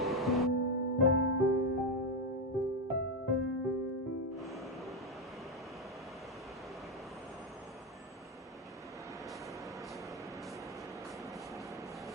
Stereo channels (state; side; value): normal; both; correlation 0.07